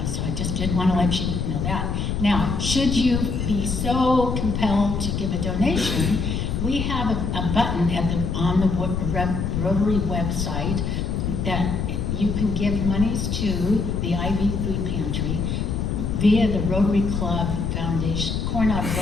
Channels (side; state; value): left; noise; rumble, 1 dB below the sound